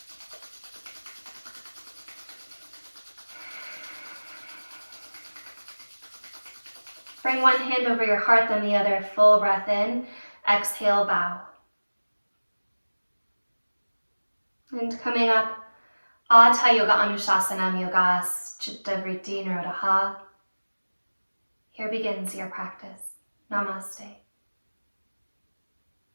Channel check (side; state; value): both; inverted; correlation -1.00